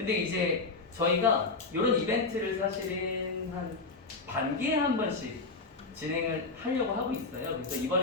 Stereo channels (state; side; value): quieter; right; 3.9 dB